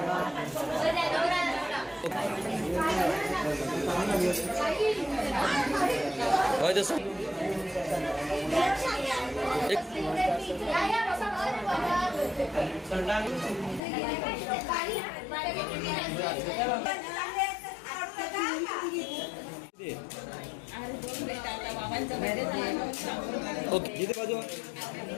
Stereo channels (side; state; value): right; drops out; at 13.8 s